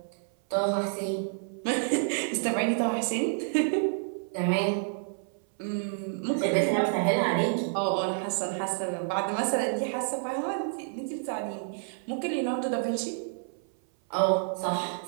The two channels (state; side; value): silent; left; 58 dB below the other